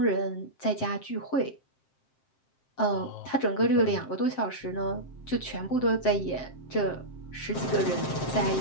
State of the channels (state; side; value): late; right; 7.6 ms